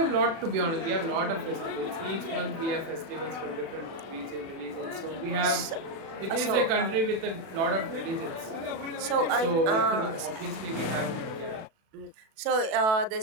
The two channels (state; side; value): late; left; 37 ms